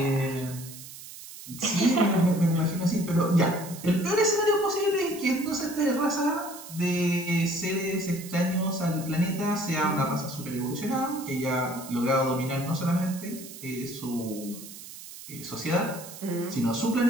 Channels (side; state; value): right; noise; hiss, 14 dB below the sound